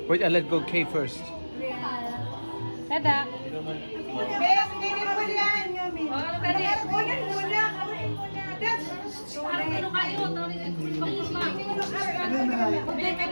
Wait, I'll let go K first. Tada.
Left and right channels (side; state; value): both; inverted; correlation -1.00